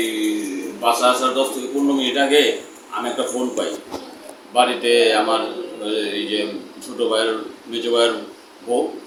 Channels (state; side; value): identical; both; correlation 1.00